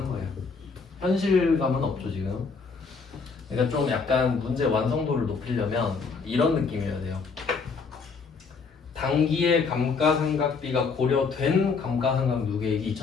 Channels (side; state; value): right; quieter; 4.9 dB